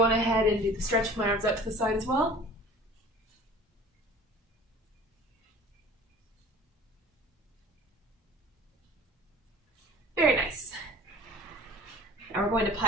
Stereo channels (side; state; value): both; normal; correlation 0.44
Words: on ahead and do the stretch with my arms out to the side as well. Very nice. Now we're going to